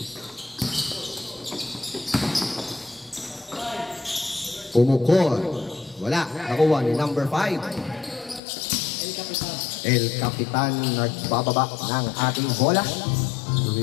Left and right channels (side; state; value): right; drops out; at 8.4 s